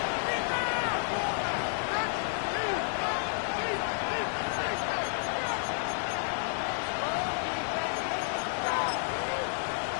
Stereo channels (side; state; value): right; silent; digital silence